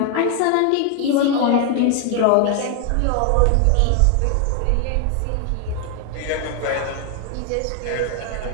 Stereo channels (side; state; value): both; different; correlation 0.01